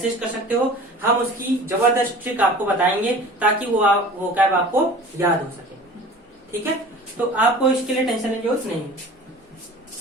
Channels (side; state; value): both; normal; correlation 0.42